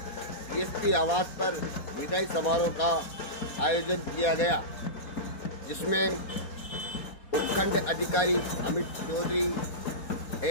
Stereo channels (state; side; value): late; right; 4.2 ms